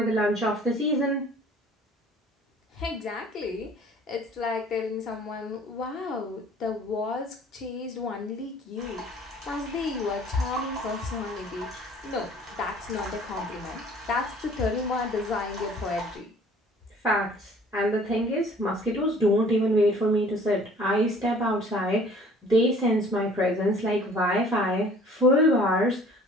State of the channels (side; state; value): both; normal; correlation 0.52